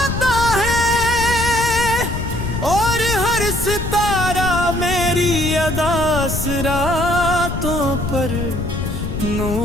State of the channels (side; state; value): left; noise; rumble, 4 dB below the sound